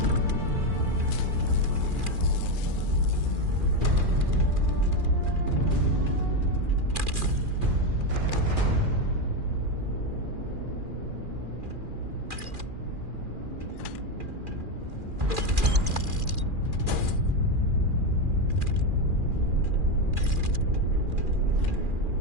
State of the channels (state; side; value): late; left; 2.4 ms